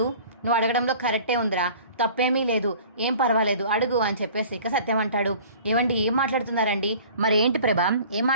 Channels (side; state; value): both; inverted; correlation -0.46